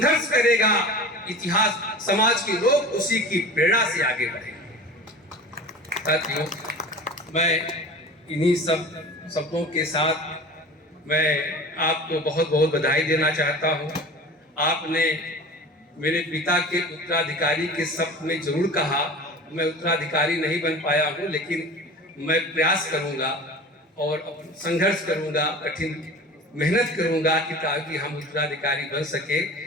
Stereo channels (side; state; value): both; normal; correlation 0.37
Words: करेगा, इतिहास समाज के लोग उसी की प्रेरणा से आगे बढ़ेंगे। साथियों, मैं इन्हीं सब शब्दों के साथ मैं आपको बहुत बहुत बधाई देना चाहता हूं। आपने मेरे पिता के उत्तराधिकारी के शब्द में जरूर कहा, मैं उत्तराधिकारी नहीं बन पाया हूं, लेकिन मैं प्रयास करूंगा और संघर्ष करूंगा, कठिन मेहनत करूंगा कि ताकि हम उत्तराधिकारी बन सके।